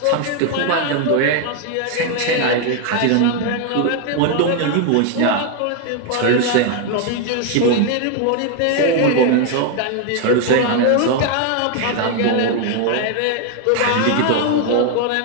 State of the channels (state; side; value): different; both; correlation 0.01